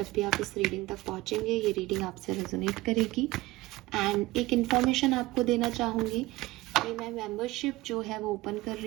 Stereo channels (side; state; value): left; quieter; 19.1 dB